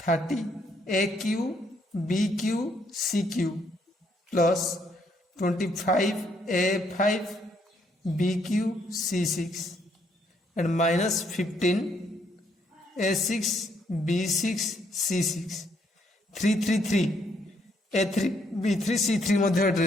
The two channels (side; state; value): both; normal; correlation 0.71